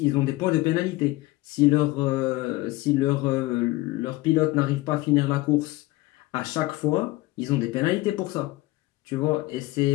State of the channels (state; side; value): quieter; right; 19.3 dB